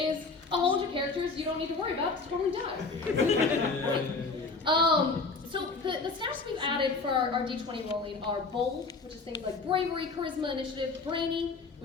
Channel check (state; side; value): quieter; right; 4.0 dB